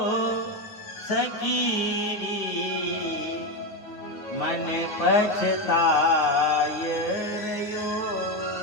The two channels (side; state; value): right; late; 9.4 ms